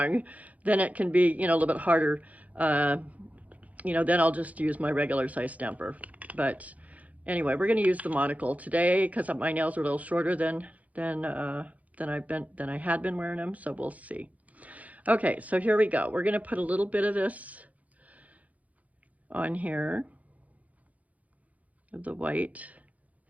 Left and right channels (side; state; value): left; late; 0.072 ms